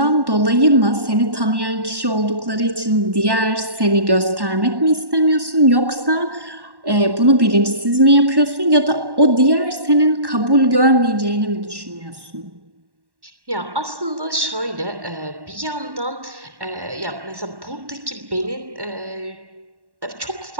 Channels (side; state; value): left; late; 1.1 ms